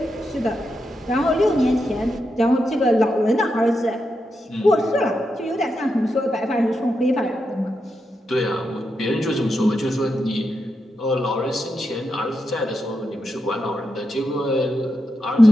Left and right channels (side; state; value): both; normal; correlation 0.86